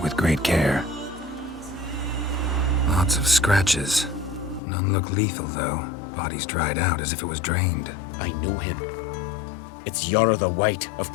with great care. Lots of scratches. None look lethal, though. Body's dried out as if it was drained. I know him. It's Yara the White of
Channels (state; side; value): drops out; right; at 4.6 s